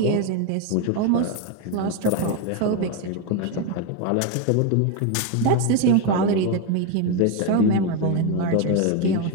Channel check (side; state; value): both; different; correlation 0.02